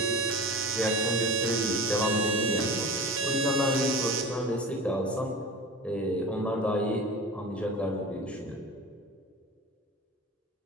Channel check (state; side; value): normal; both; correlation 0.34